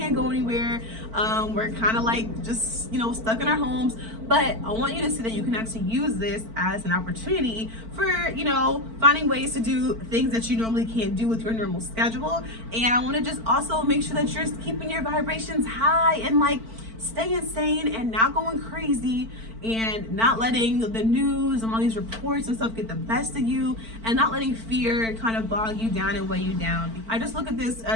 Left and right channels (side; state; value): left; late; 4.5 ms